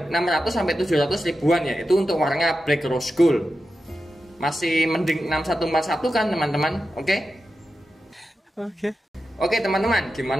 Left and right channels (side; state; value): both; normal; correlation 0.91